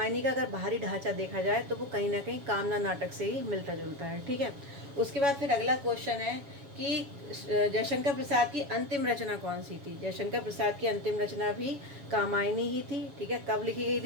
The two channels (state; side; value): late; left; 7.1 ms